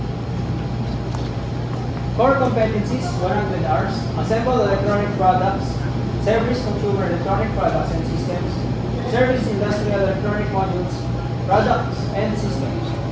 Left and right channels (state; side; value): identical; both; correlation 1.00